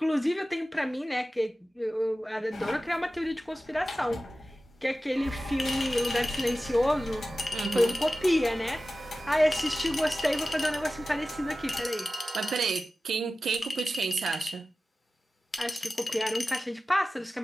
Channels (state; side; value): normal; both; correlation 0.95